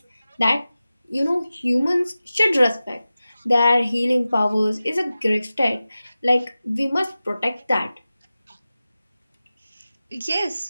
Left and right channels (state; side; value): inverted; both; correlation -0.95